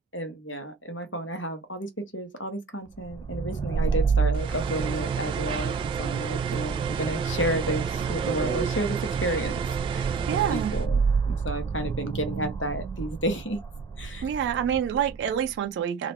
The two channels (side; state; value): left; quieter; 4.4 dB